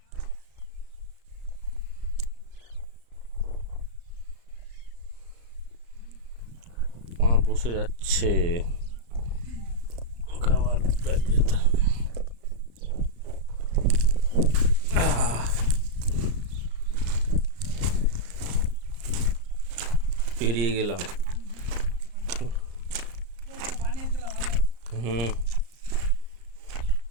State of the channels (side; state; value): left; late; 34 ms